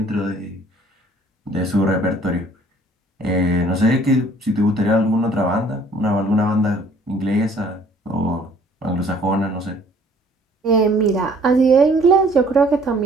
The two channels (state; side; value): normal; both; correlation 0.57